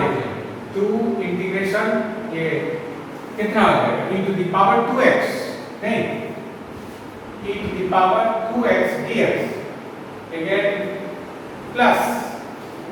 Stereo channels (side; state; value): both; identical; correlation 1.00